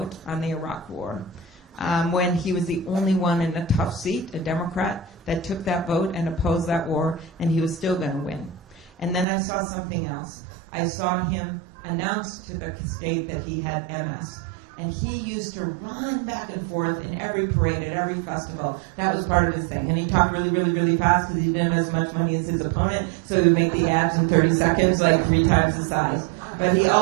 on the Iraq War when he was the only one in a tough seat, a Democrat, that took that vote and opposed that war, and he was still going to win. And then I saw something else. I saw him announce to the state that he had MS. And he used to run back and forth in every parade, at every festival. That was part of his thing. And he talked really, really, really fast because he didn't have as much money as his opponent, so he would make the ads in 30 seconds, like 3 times the size. But he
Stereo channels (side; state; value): left; drops out; at 9.2 s